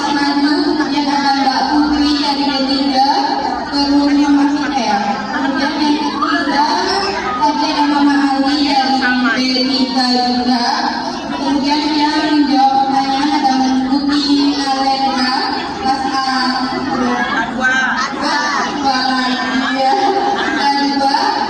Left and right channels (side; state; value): both; identical; correlation 1.00